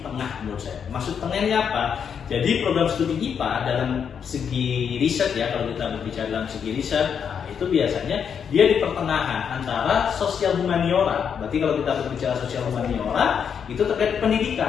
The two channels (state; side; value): quieter; right; 7.4 dB